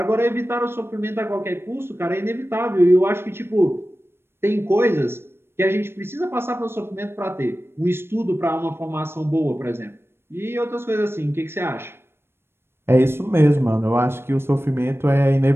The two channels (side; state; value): left; late; 0.12 ms